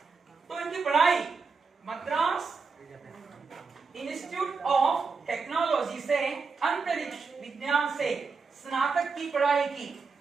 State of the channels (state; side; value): quieter; left; 4.8 dB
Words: तो इनकी पढ़ाई मद्रास इंस्टीट्यूट ऑफ टेक्नोलॉजी से अंतरिक्ष विज्ञान से स्नातक की पढ़ाई की।